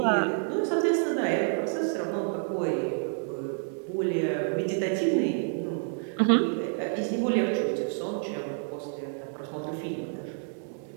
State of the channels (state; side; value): silent; left; 55 dB below the other